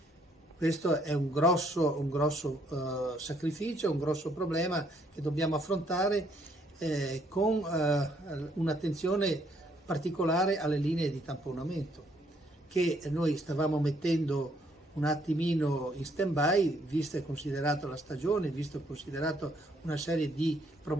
Questo è un grosso sacrificio, un grosso problema che dobbiamo affrontare con un'attenzione particolare alle linee di tamponamento, che noi stavamo mettendo un attimino in stand-by, vista e considerata la stagione, visto e considerato una serie di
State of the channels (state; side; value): normal; both; correlation 0.69